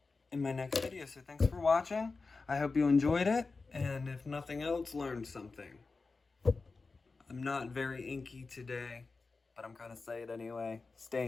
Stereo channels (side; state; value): right; quieter; 4.1 dB